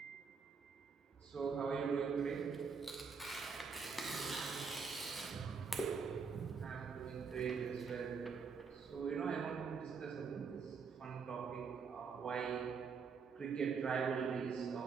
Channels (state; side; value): quieter; left; 5.5 dB